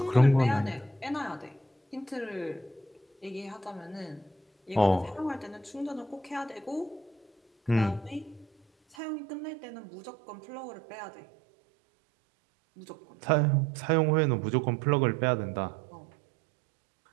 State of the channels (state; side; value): drops out; left; at 9.0 s